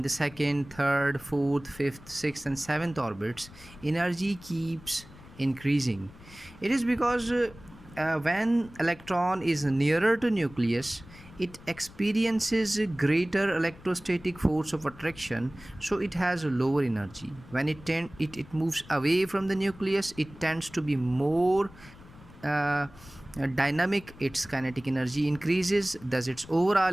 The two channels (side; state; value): left; noise; rumble, 20 dB below the sound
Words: the second, third, fourth, fifth, sixth, and seventh orbits, energy keeps increasing. It is because when electron is nearer to nucleus, it experiences a greater electrostatic force of attraction, so it has a lower energy. When it moves away from the nucleus, it tends to be more uh, dynamic. Its kinetic energy increases, thus its